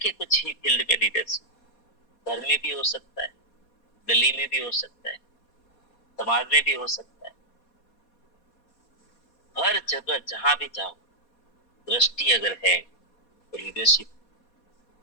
कुछ ही फील्ड में लीडरशिप, घर में भी हो सकता है, गली में भी हो सकता है, समाज में भी हो सकता है। हर जगह जहां भी जाओ, दृष्टि अगर है तो लीडरशिप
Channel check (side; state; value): right; late; 4.2 ms